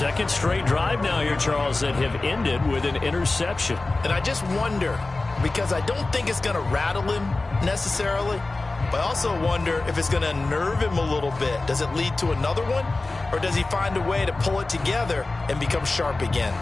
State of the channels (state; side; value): quieter; right; 3.3 dB